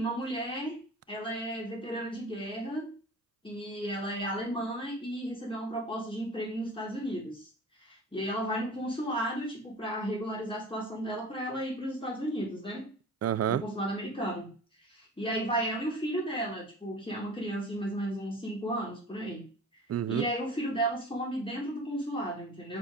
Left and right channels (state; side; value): normal; both; correlation 0.40